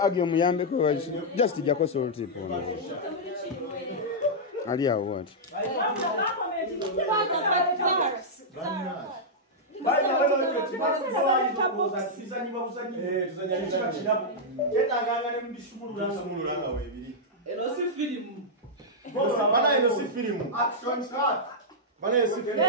agyo muyambe ko just jako salt ipo. Ali awo what? Action start. Bana si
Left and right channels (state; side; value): normal; both; correlation -0.08